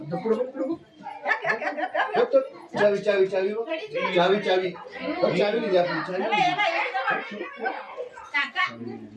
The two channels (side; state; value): both; identical; correlation 1.00